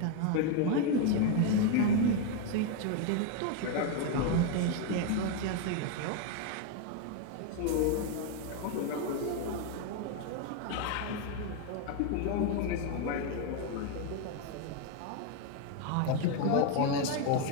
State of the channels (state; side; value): different; both; correlation 0.02